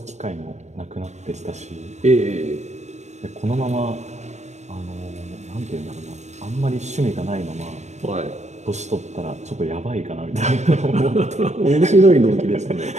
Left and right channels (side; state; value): left; late; 0.33 ms